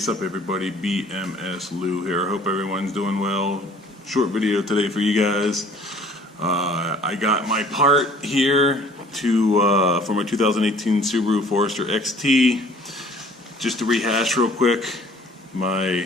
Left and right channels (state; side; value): normal; both; correlation 0.53